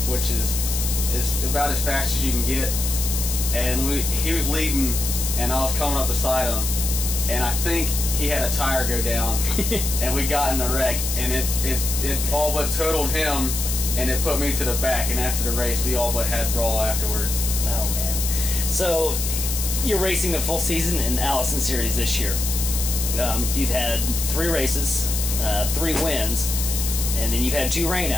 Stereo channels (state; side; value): noise; left; hiss, 3 dB below the sound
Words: which is about as fast as you can get. And he was leading, and I was coming up beside him, and I think he had a tire go down, and we got in a wreck, and it all but totaled him, and it put me to the back. And after the race, we all but had brawl afterwards. Oh man! So you're racing the full season in Allison Series this year. You've had 3 races, 3 wins, and then you've had 2